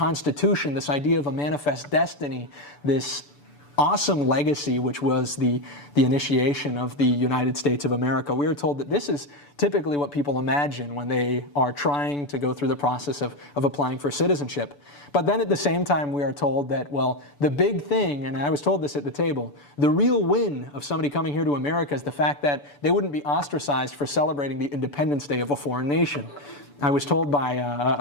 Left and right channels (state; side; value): late; right; 6.9 ms